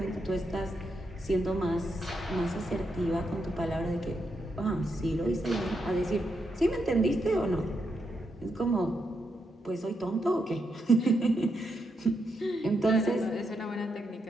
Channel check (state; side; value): normal; both; correlation 0.82